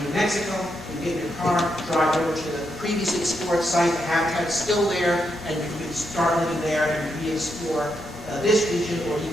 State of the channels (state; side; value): normal; both; correlation 0.81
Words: New Mexico. You get in your car, drive over to the previously explored site, the habitat's still there, and you can start living there and re-explore this region, or